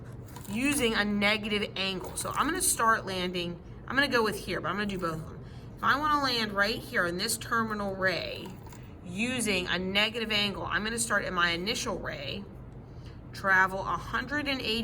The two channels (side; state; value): both; identical; correlation 1.00